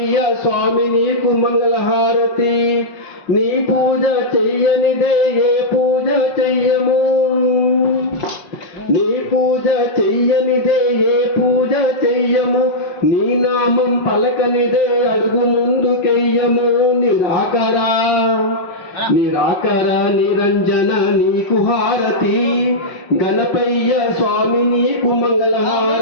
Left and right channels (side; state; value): right; late; 5.5 ms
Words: స్వామి నీకు మంగళహారతి. నీ పూజ చెయ్యనిదే ఏ పూజ చెయ్యము, నీ పూజ చెయ్యనిదే ఏ పూజ చెయ్యము. నీ నామం పలకనిదే అడుగు ముందుకెయ్యము. నిరాకర నిరంజన నీకు హారతి, గణపయ్య స్వామి నీకు